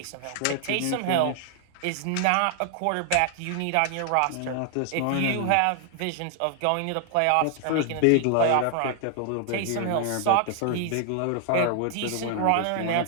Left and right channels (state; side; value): different; both; correlation 0.00